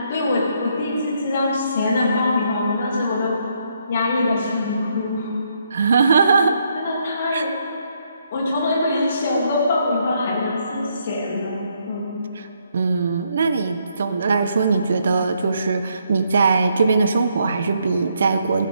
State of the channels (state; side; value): inverted; both; correlation -0.74